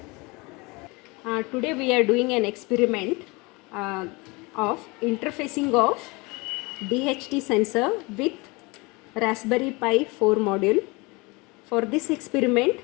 Today we are doing an experiment of interfacing of DHT sensor with Raspberry Pi 4 module. For this experiment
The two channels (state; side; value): quieter; right; 26.0 dB